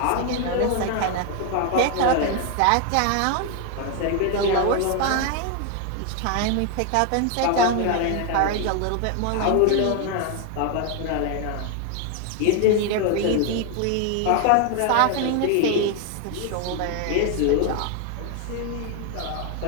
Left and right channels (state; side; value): different; both; correlation 0.01